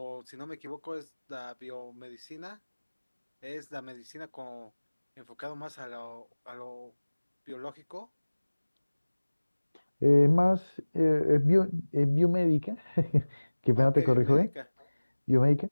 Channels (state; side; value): inverted; both; correlation -1.00